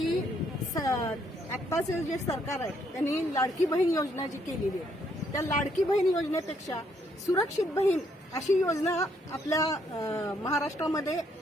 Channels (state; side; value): normal; both; correlation 0.71